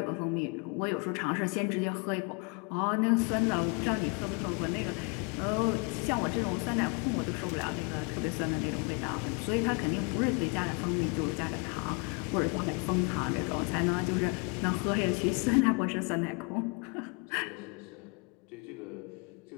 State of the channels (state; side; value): quieter; right; 31.9 dB